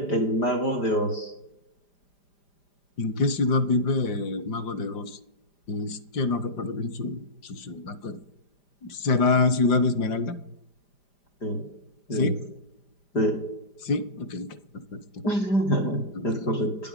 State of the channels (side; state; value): right; late; 5.0 ms